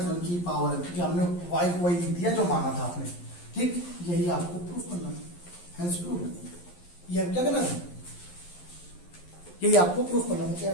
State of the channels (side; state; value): right; late; 11 ms